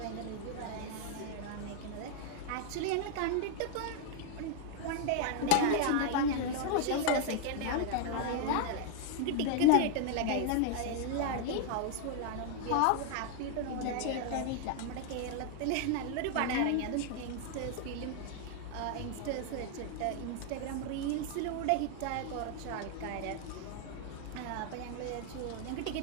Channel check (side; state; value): both; different; correlation 0.00